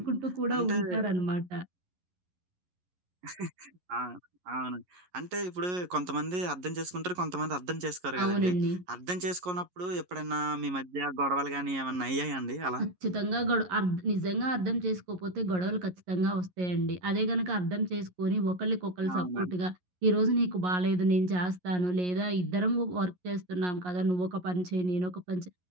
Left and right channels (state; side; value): late; left; 11 ms